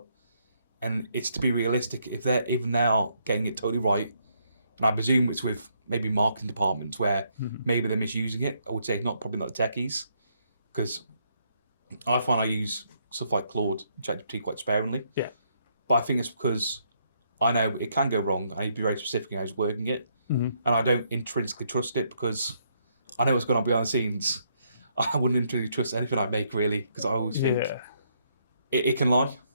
And it's to be realistic, if they're even now getting it totally right, and I presume it's with maybe marketing departments where maybe they're misusing it. I would say probably not the techies, because I find I use stuff like Claude, ChatGPT quite sparingly. Yeah. But I think it's because I know it can go wrong. I need to be very specific in how I was working it. And I don't intrinsically trust it because I know what's going on behind the scenes. I wouldn't intrinsically trust anything I make, really, because I always think it can lie.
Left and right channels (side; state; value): both; inverted; correlation -0.73